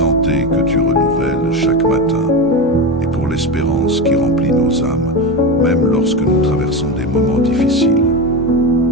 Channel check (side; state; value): both; normal; correlation 0.19